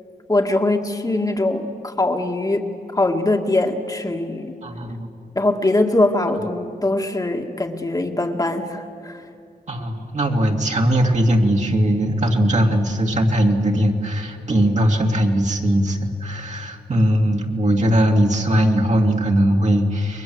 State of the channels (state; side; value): normal; both; correlation 0.83